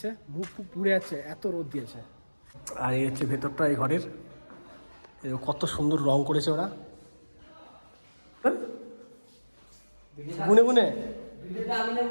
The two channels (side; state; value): both; inverted; correlation -1.00